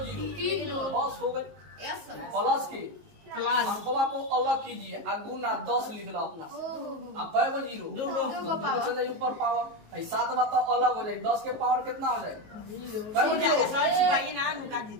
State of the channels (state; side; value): late; left; 19 ms